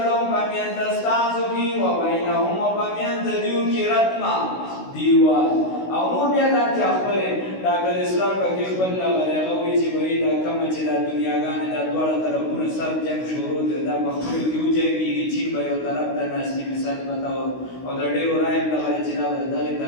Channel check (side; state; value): right; late; 16 ms